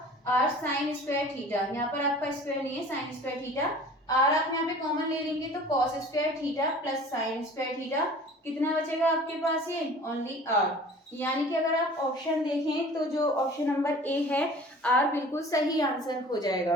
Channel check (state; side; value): normal; both; correlation 0.45